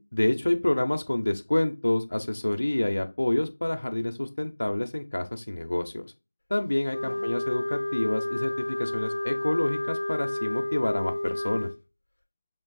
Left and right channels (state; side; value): inverted; both; correlation -1.00